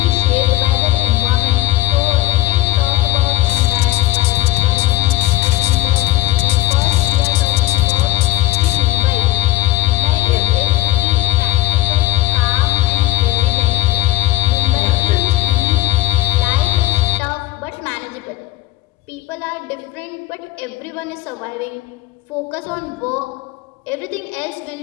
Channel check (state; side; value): quieter; right; 17.9 dB